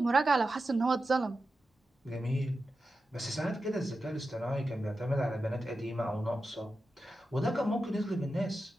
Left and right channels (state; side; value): normal; both; correlation 0.91